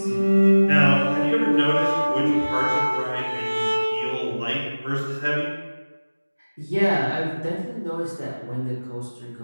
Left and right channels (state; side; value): inverted; both; correlation -1.00